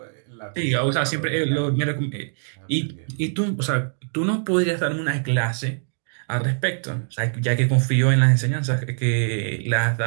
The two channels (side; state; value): left; silent; digital silence